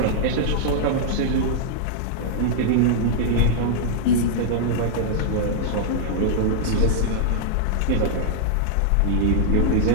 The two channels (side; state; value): both; different; correlation -0.01